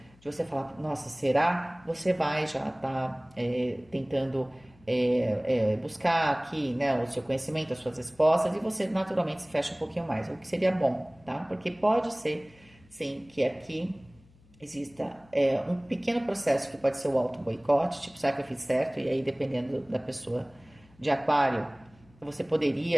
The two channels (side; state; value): left; noise; hum, 28 dB below the sound